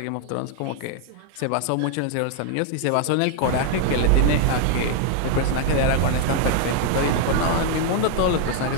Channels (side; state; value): both; different; correlation 0.00